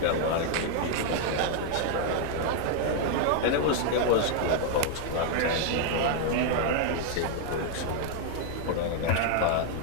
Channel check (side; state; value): both; different; correlation 0.00